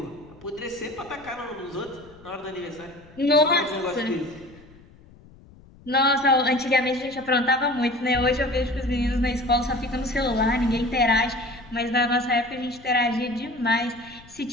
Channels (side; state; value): left; noise; rumble, 24 dB below the sound